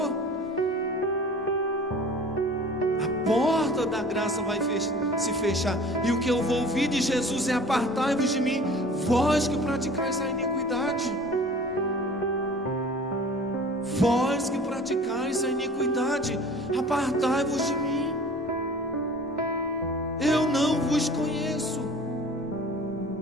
A porta da graça vai se fechar, e o que eu vou ouvir de Jesus é: apartai-vos de mim, vós que praticais a iniquidade. Vós que praticais a iniquidade, apartai-vos de mim, eu não vos conheço.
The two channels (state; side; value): normal; both; correlation 0.44